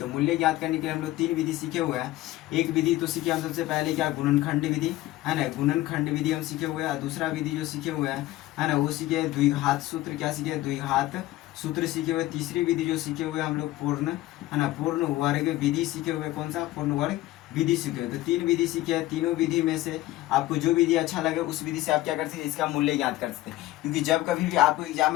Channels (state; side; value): quieter; right; 16.5 dB